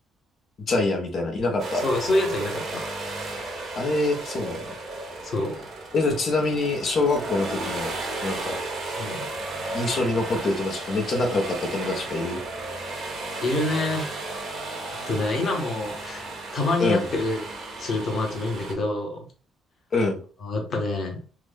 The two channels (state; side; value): normal; both; correlation 0.70